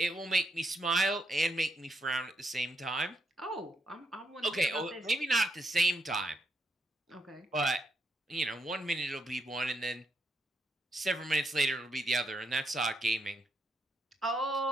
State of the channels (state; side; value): normal; both; correlation 0.79